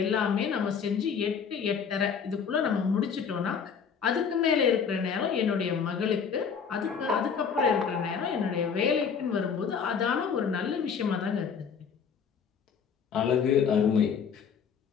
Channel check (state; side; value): quieter; right; 6.6 dB